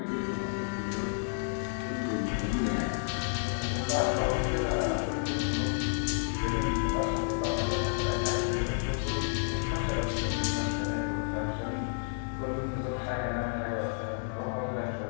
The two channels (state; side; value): silent; right; digital silence